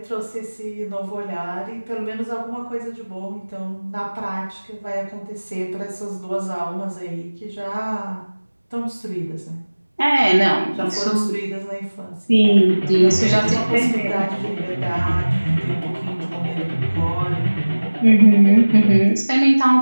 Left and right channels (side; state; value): both; inverted; correlation -1.00